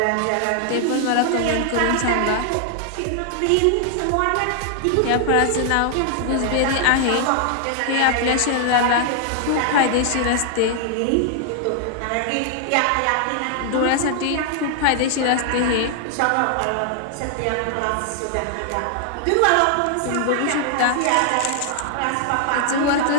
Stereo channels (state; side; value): different; both; correlation 0.00